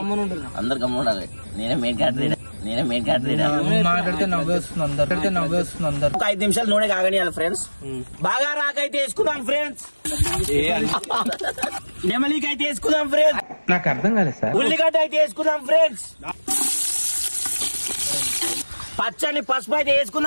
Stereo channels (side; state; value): both; inverted; correlation -1.00